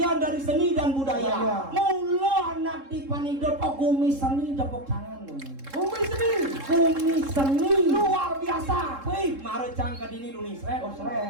dari seni dan budaya. Mula anak di Panido gumi seni dapok tangan. Gumi seni luar biasa. Wih, mare cangka dini Indonesia.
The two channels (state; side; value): late; left; 3.7 ms